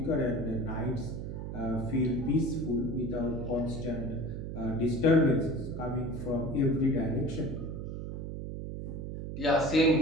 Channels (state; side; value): noise; right; hum, 6 dB below the sound